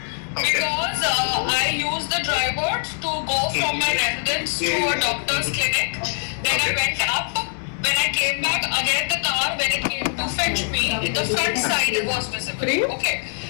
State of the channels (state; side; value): silent; right; digital silence